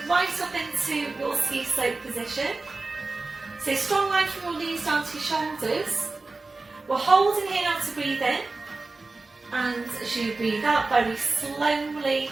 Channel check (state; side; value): quieter; left; 3.6 dB